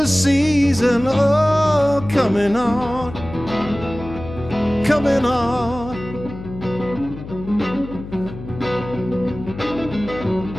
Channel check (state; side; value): noise; left; hum, 12 dB below the sound